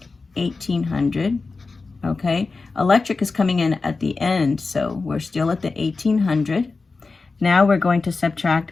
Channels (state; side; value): quieter; right; 4.0 dB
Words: 1,800. Okay, electric is coming in at the end, so we're still at the 1,800. Now we're going to subtract